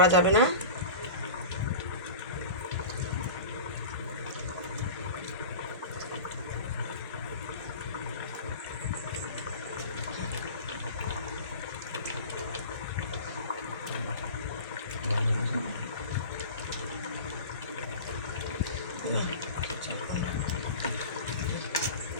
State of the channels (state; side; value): inverted; both; correlation -0.35